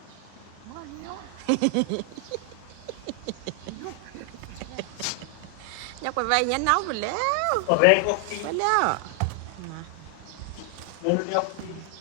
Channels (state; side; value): different; both; correlation 0.00